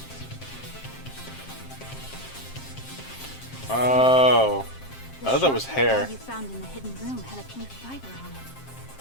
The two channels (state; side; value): late; right; 7.5 ms